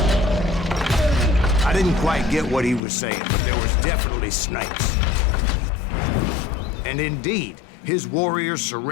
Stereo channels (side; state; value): right; drops out; at 2.8 s